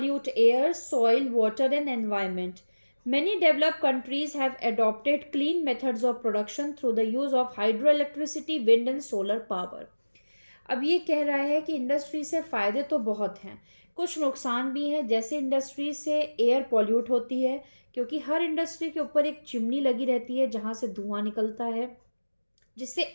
air, soil, water, and environment. Many developed countries have adopted clean methods of production through the use of hydroelectricity, wind and solar power. अब ये कह रहा है कि इंडस्ट्री से फायदे तो बहुत हैं, कुछ नुकसान भी हैं। जैसे इंडस्ट्री से एयर पॉल्यूट होती है, क्योंकि हर इंडस्ट्री के ऊपर एक चिमनी लगी रहती है जहां से धुआं निकलता है, जिससे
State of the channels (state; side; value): inverted; both; correlation -1.00